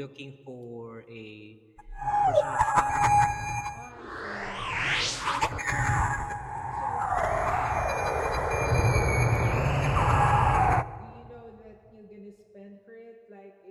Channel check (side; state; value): both; identical; correlation 1.00